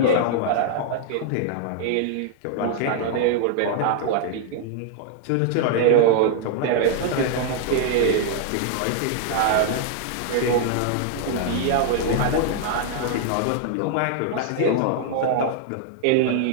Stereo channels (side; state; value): both; different; correlation 0.00